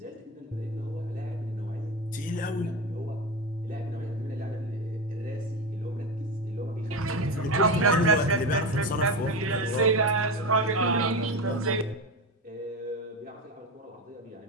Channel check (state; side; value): normal; both; correlation 0.20